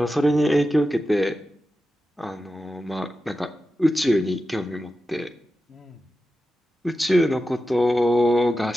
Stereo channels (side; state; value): both; normal; correlation 0.92